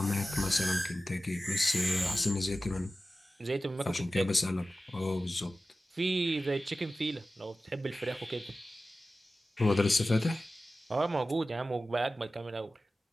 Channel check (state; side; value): normal; both; correlation 0.95